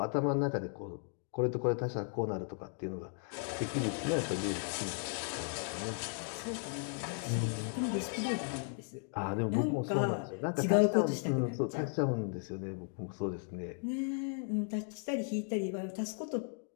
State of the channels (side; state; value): right; silent; 54 dB below the other